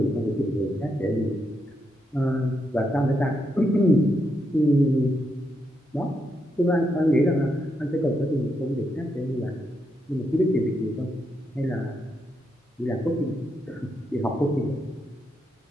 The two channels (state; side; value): normal; both; correlation 0.81